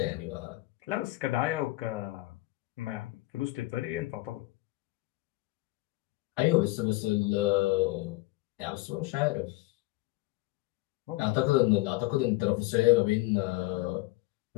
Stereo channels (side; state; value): right; quieter; 20.9 dB